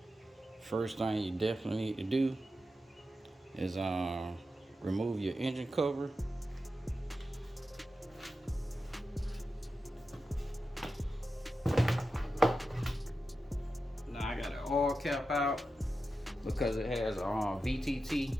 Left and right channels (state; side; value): normal; both; correlation 0.91